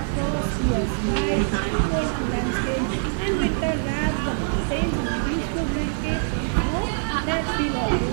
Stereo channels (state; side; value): silent; left; digital silence